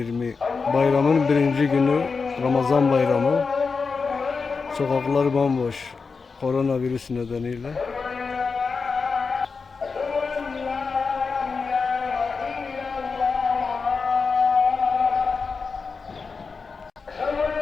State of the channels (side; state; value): right; quieter; 4.8 dB